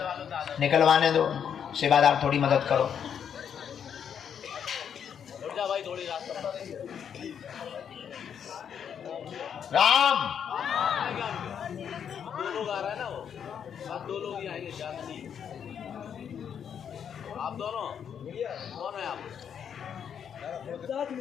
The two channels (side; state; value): right; quieter; 8.1 dB